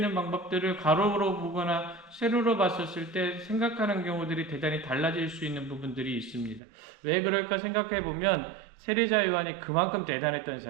방법들을 가로로 보거나 세로로 봤었을 때 생각하는 경우들이 대단히 달라질 수 있는 부분들이 있습니다. 왜 그럴까 생각해 보면 세례자 요한이 그만큼 대단했던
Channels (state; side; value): drops out; left; at 6.6 s